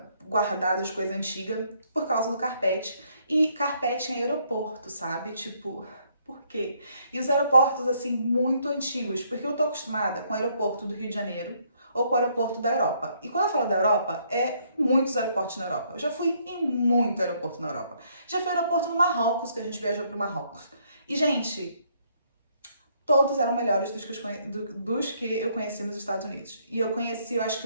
guardada, de coisa antiga, por causa do carpete. E carpete em aeroporto, sabe? Tipo, por quê? E os aeroportos, assim, muito antigos. Porque eu tô acostumada com o aeroporto do Rio de Janeiro ou com o aeroporto da Europa. E quando eu falo da Europa, muitos aeroportos na Europa. Eu já fui em muito aeroporto na Europa. Já fui aeroporto no Marrocos, que a gente viajou pro Marrocos. E, gente, todos eram melhores dos que eu conheci nos Estados Unidos. E eu conheci, eu acho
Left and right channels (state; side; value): inverted; both; correlation -0.69